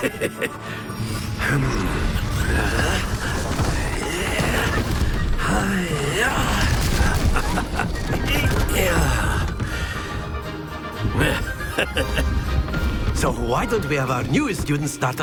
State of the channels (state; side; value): identical; both; correlation 1.00